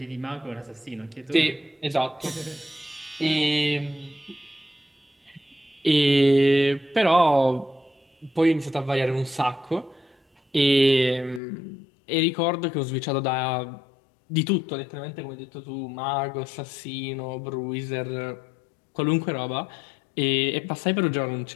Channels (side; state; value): right; drops out; at 11.4 s